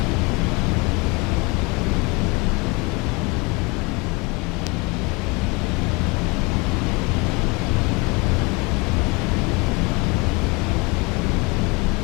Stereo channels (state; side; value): quieter; right; 27.5 dB